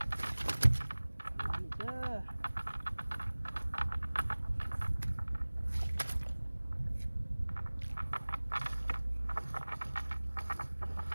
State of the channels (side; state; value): both; inverted; correlation -1.00